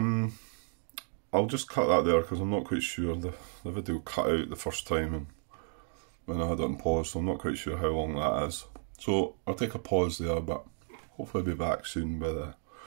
I'll just cut that there because I'm not quite sure. The video cut out the first time and when I had it on pause, so I'm not quite sure how long that is. So I'll take a pause there, but hopefully I'll be back soon with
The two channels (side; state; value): left; silent; 56 dB below the other